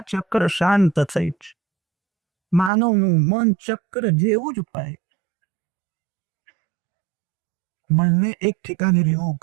ચક્ર શાંત થઈ છે. માનવનું મન ચક્ર જેવું જ પાય. મનને એક ઠેકાને રહેવું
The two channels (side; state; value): left; drops out; at 2.7 s